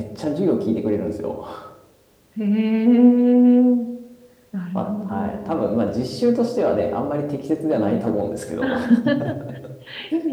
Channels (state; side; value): identical; both; correlation 1.00